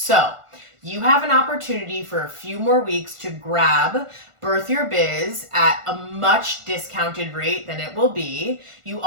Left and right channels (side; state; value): left; late; 1.5 ms